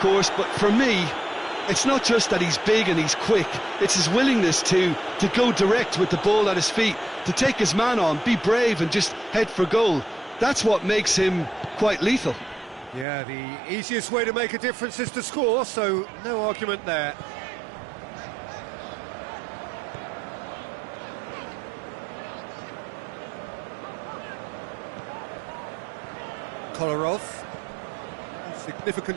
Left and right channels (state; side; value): drops out; left; at 13.1 s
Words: but for me, it's not just that he's big and he's quick, it's his willingness to go direct with the ball at his feet, to take his man on, be brave and just head for goal. That's what makes him quite lethal. Yeah, the easiest way to make a difference is to score, so no argument there. Kolarov.